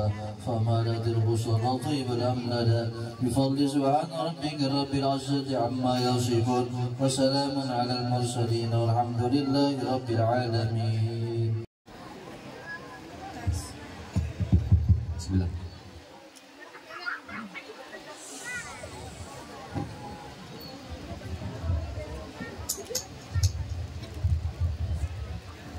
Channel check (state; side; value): identical; both; correlation 1.00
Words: فمالت البصر طيب الأمندا بفضل سبحان ربك رب العزة عما يصفون وسلام على المرسلين والحمد لله رب العالمين. بسم الله.